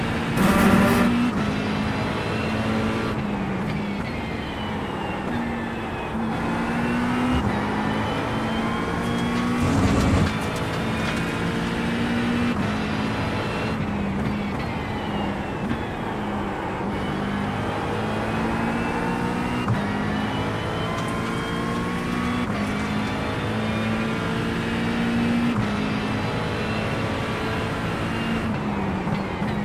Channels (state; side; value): identical; both; correlation 1.00